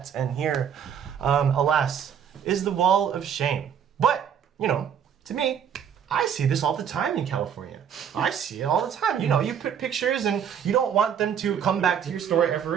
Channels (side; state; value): left; quieter; 8.2 dB